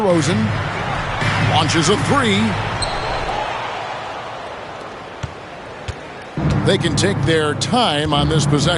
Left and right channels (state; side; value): identical; both; correlation 1.00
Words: Launches a three. They can take their time on this